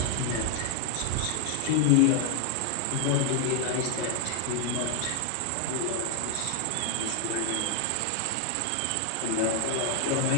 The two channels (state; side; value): different; both; correlation 0.00